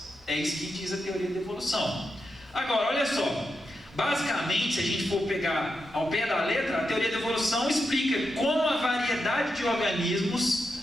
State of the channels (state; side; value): normal; both; correlation 0.86